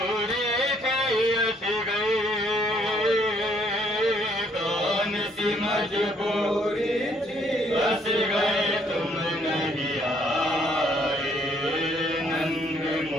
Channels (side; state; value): both; normal; correlation 0.66